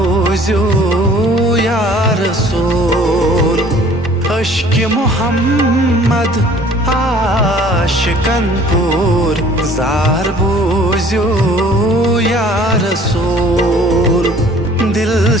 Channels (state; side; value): normal; both; correlation 0.53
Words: या रसूल। अश्क मोहम्मद आशिकन पुर जार बोझो या रसूल। दिल